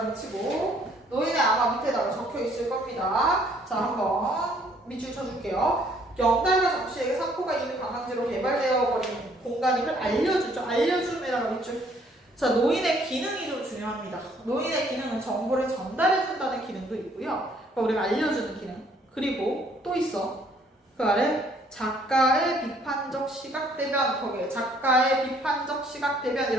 치고 노인의 아마 밑에다가 적혀 있을 겁니다. 자, 한번 밑줄 쳐줄게요. 영달과 정씨에게 산포가 이미 관광지로 개발되어 버린 공간임을 알려주죠. 알려줌에다가 밑줄. 자, 노인의 기능이 좀 중요합니다. 노인의 기능은 정보를 전달해준다는 기능도 있고요. 그러니까 우리가 알려주는 기능. 그리고 또 있어. 그 아래 작가의 비판적 시각대변. 거기에 작가의 비판적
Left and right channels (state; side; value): normal; both; correlation 0.63